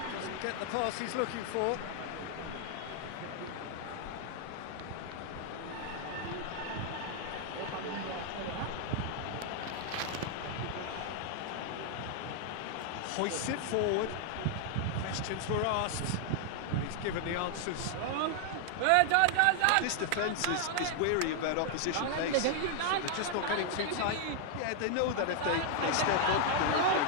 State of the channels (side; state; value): both; different; correlation 0.00